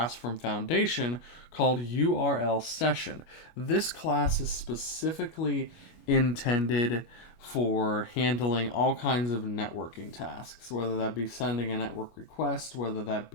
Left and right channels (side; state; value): right; late; 25 ms